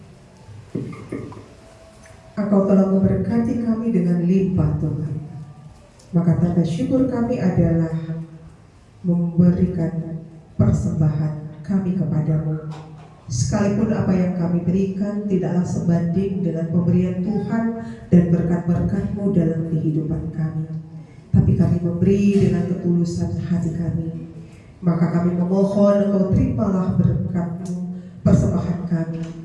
Engkau telah memberkati kami dengan limpah Tuhan. Maka tanda syukur kami adalah memberikan persembahan kami kepadamu. Sekalipun apa yang kami berikan tidaklah sebanding dengan pemberian Tuhan dan berkat-berkat-Mu dalam kehidupan kami. Tapi kami memberi dengan ketulusan hati kami. Maka kami memohon Engkau terimalah berkat-Mu, persembahan kami.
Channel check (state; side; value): identical; both; correlation 1.00